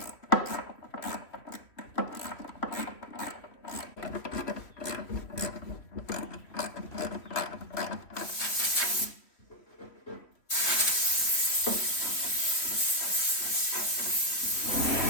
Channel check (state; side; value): late; right; 3.1 ms